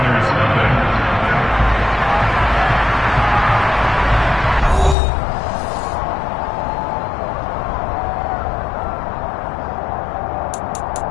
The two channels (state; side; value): drops out; right; at 5.0 s